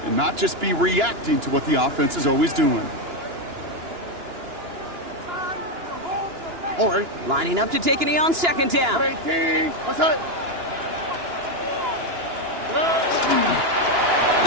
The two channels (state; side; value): late; left; 2.9 ms